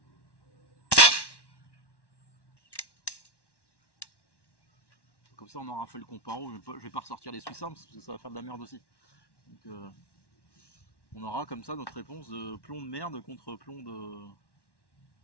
Comme ça, on aura fait le comparo. Je vais pas ressortir les Swiss Arms parce que ça va faire de la merde aussi. Donc, on aura comme ça notre réponse de plomb de merde contre plomb,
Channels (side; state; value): right; late; 1.1 ms